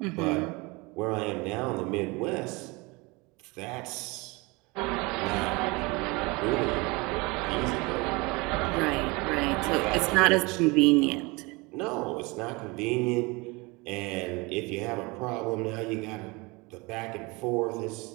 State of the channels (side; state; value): left; quieter; 25.6 dB